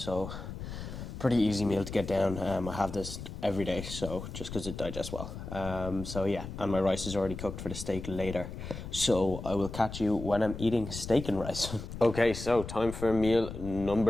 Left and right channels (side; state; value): left; noise; rumble, 9 dB below the sound